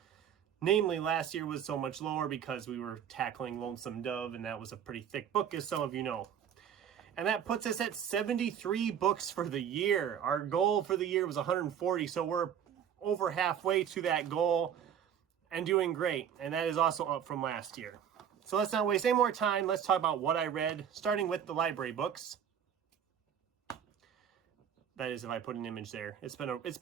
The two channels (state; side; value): quieter; left; 8.8 dB